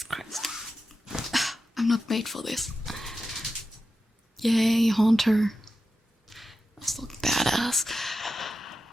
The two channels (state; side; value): normal; both; correlation 0.91